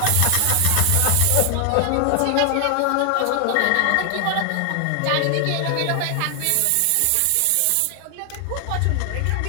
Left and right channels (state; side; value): different; both; correlation 0.00